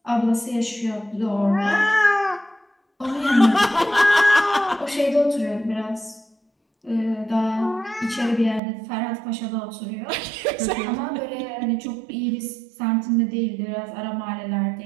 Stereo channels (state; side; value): drops out; left; at 8.6 s